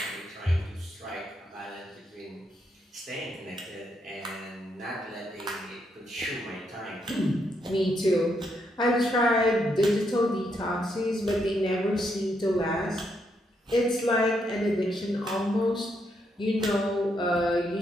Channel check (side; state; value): both; normal; correlation 0.78